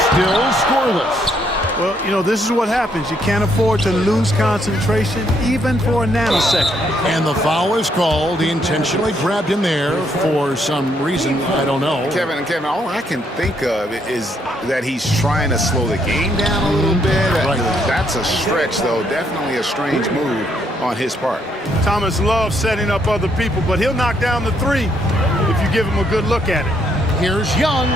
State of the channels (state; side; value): normal; both; correlation 0.72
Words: Still scoreless. Well, you know, this is what happens. You can't afford to lose concentration even for a nanosecond. And the foul is called. He intentionally grabbed him there for some reason. I don't know. Kevin, all I can think of is that he's trying to slow the game down a little bit. Right. That's a stretch, though. Definitely a strange move on his part. Thomas loves setting up other people, but he'll knock down the 3 if you give him a good look at it. Here's Young.